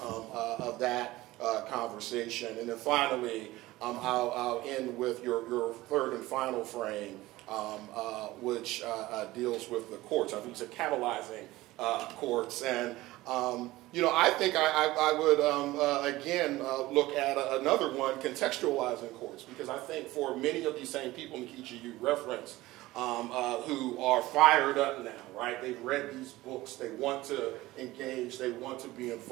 that conversation. And then finally, I'll end with your third and final frame, which deals with the courts. I think it's a catalyzing courts. And, I think I would, again, look at another one, contextualizing courts, because I think for many of these same people, Nkechi, you referenced, who are fired up now, right? They've read these books. They want to engage. They want to be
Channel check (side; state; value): left; quieter; 18.1 dB